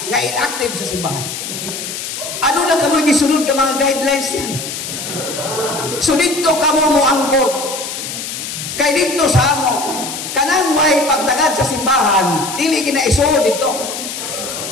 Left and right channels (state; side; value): noise; left; hiss, 7 dB below the sound